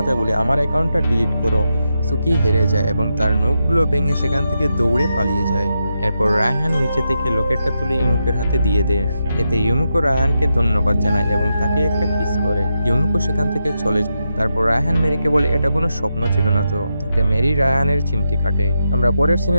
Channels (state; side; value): inverted; both; correlation -0.86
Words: বলে আমার অ্যাকাউন্টটা ডিলিট করো। সুকি হেরে যায় এবং তার নখগুলো ভেঙে সেখান থেকে দৌড়ে পালিয়ে যায়। এরপর রায়হান নিচে থেকে লকেটটা তুলে ইমুকের হাতে দিয়ে দেয়। এতে ইমুকো রায়হানকে ধন্যবাদ জানায় এবং তাকে একটা কিস করে। ইমুকো সেখান থেকে চলে যায়। তারপর রায়হান মেরিকে বলে এটা কোনো স্বপ্ন ছিল না তো। তাতে মেরি রায়হানের চিমটি কাটে। আমরা পরের